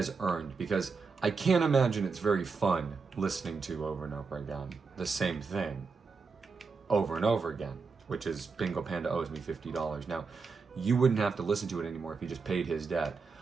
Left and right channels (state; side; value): quieter; left; 4.8 dB